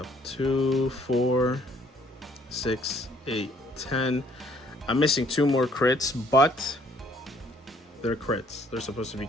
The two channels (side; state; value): both; normal; correlation 0.63